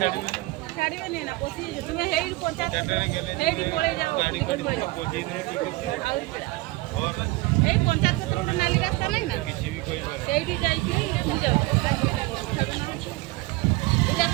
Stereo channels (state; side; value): quieter; left; 21.1 dB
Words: ନା ପଶି ତୁମେ ହେଇଠି ପଞ୍ଚାୟତ ହେଇଠି ପଳେଇ ଯାଅ ଟିକେଟ ପଳେଇ ଯାଅ ଏଇ ପଞ୍ଚାୟତ ପତ୍ର ଗୋଟେ ନାଲି ରାସ୍ତା ନାହିଁ ନା ସେଇଠି ଯାଇକି ଯାଅ ଏଇଟା